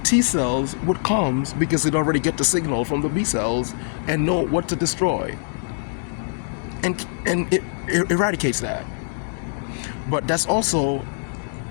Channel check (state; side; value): silent; right; digital silence